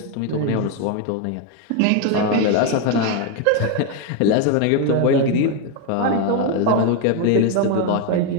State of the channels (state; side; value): different; both; correlation 0.01